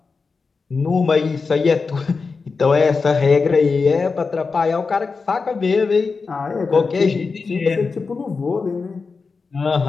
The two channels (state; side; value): quieter; right; 4.6 dB